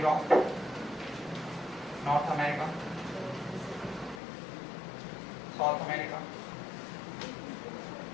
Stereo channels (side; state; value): right; drops out; at 4.2 s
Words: नॉर्थ अमेरिका, साउथ अमेरिका,